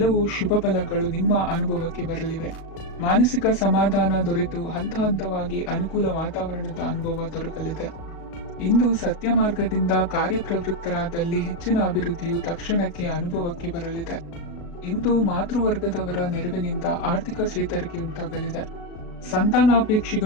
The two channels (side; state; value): right; late; 36 ms